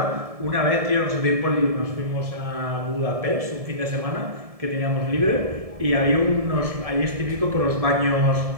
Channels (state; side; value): late; left; 1.7 ms